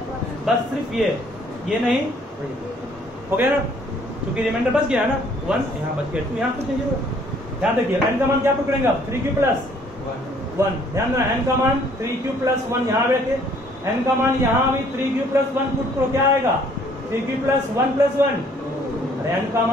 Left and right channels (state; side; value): normal; both; correlation 0.61